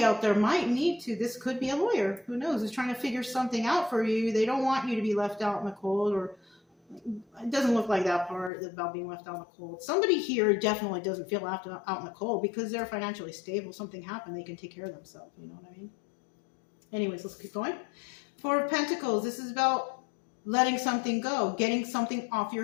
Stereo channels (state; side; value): drops out; right; at 8.5 s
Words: out there might need to. This could be a lawyer. Who knows? Is trying to figure something out for you. They don't want you to be left out in the cold, or it doesn't look like that part about being left out in the cold. Somebody here definitely doesn't feel left out in the cold because they're financially stable. Something happened. They can take care of themselves. You know what I mean? Anyways, let's keep going. Four of Pentacles. This is about letting something go, getting something off